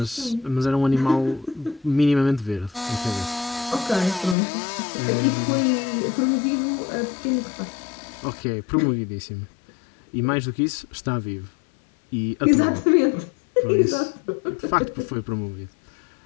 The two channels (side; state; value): right; drops out; at 4.4 s